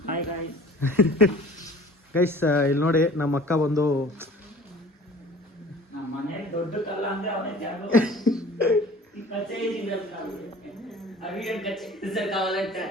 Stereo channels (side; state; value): both; normal; correlation 0.46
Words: Hi guys. ಗೈಸ್ ಇಲ್ಲಿ ನೋಡಿ ನಮ್ಮ ಅಕ್ಕ ಬಂದು ನಮ್ಮ ಮನೆಯಲ್ಲಿ ದೊಡ್ಡ ಕಲ್ಲ ಅಂದ್ರೆ ಅವನೇ ಜಾಗ